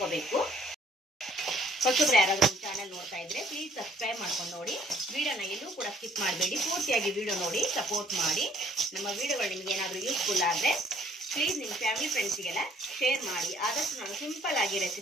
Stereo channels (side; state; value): both; normal; correlation 0.61